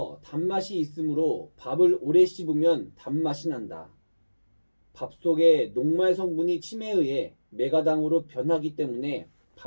단맛이 있으므로 밥을 오래 씹으면 단맛이 난다. 밥 속의 녹말 성분이 침에 의해 메가당으로 변하기 때문에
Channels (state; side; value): inverted; both; correlation -1.00